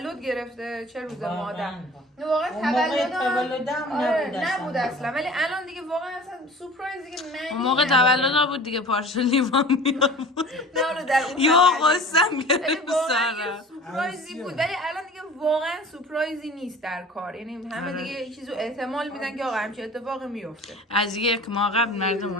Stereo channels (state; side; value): normal; both; correlation 0.42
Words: گرفته چه روز مادر. واقعا تولدم نبود اصلا. ولی الان دیگه واقعا اصلا سورپرایز دیگه نه. اون موقع تولد بود دیگه پارچه لیوان میآورد. نه اون در اون یا قسم گرفت سارا. سورپرایزی بود ولی الان دیگه واقعا سورپرایزی نیست در کار. یعنی همه دیگه یه چیزو احتمال میدن که آقا همچین اتفاقی میفته. از یک ماه قبل مردم